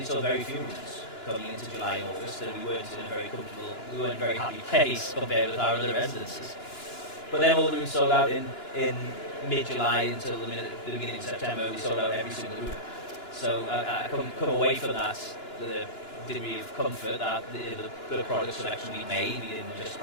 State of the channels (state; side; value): late; right; 2.9 ms